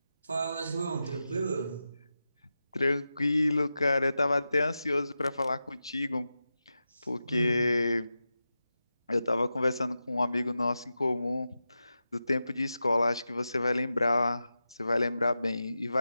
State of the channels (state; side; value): inverted; both; correlation -0.92